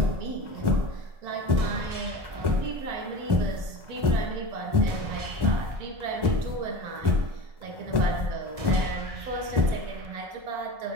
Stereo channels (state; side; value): late; left; 1.1 ms